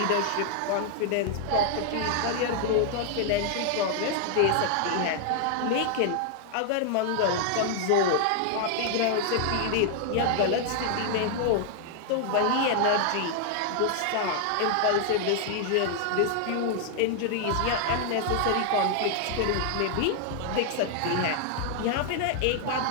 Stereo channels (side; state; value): both; different; correlation 0.00